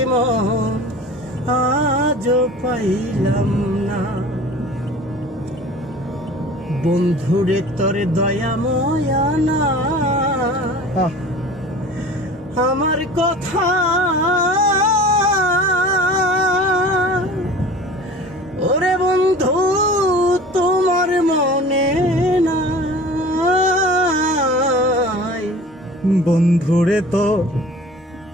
মন আজও পাইলাম না বন্ধুরে তোর দয়া ময়া না আমার কথা ওরে বন্ধু তোমার মনে নাই বন্ধুরে তো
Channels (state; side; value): normal; both; correlation 0.41